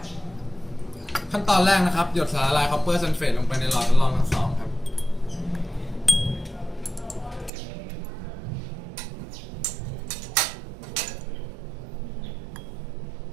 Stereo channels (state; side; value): drops out; left; at 7.5 s